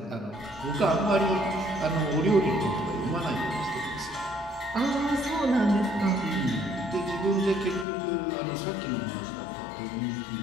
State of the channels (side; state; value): right; drops out; at 7.9 s